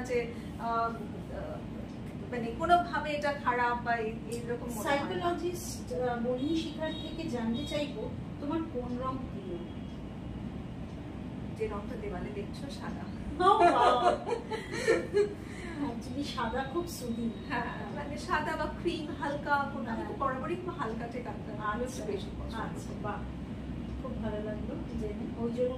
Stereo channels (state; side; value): identical; both; correlation 1.00